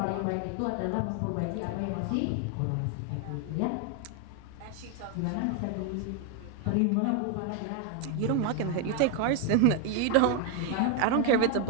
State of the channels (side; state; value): both; different; correlation 0.01